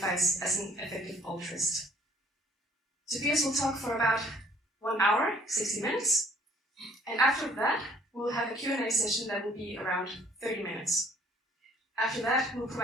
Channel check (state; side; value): normal; both; correlation 0.58